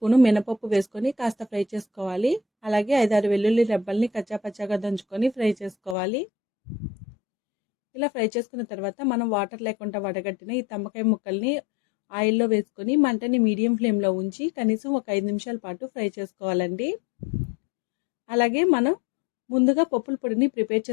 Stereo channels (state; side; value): drops out; right; at 6.0 s